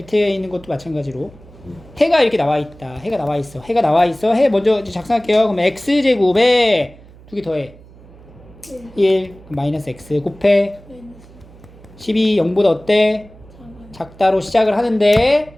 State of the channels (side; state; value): right; noise; hum, 23 dB below the sound